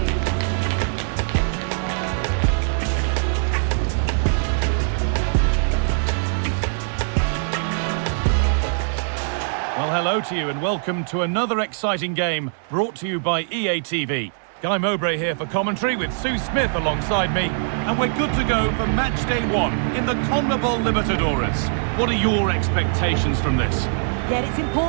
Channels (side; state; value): left; silent; 64 dB below the other